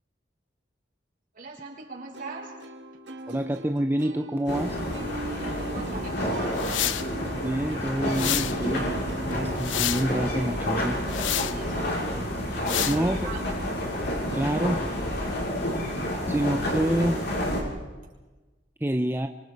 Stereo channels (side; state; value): both; normal; correlation 0.55